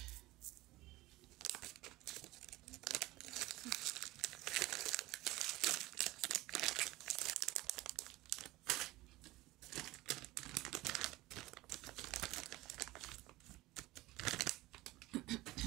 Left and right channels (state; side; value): quieter; left; 18.8 dB